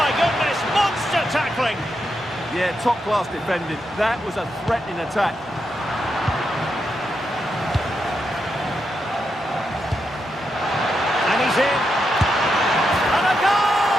goodness, monster tackling. Yeah, top-class defending. That was a threatening attack. And he's in. And a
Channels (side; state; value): both; normal; correlation 0.84